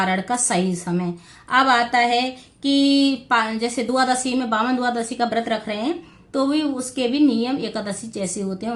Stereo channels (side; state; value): both; identical; correlation 1.00